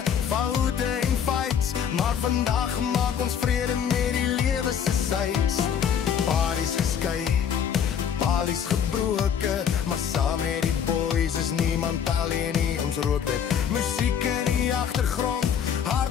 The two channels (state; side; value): quieter; right; 8.1 dB